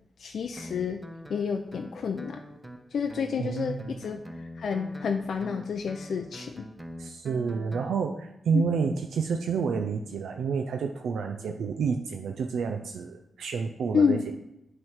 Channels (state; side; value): normal; both; correlation 0.75